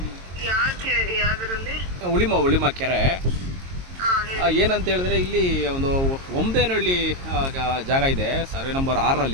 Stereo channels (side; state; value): left; late; 22 ms